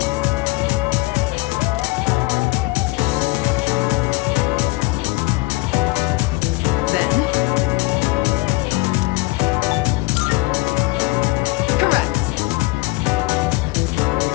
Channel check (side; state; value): right; quieter; 22.9 dB